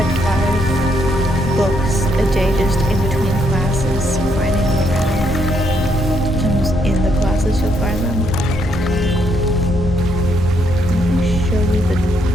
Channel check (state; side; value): normal; both; correlation 0.74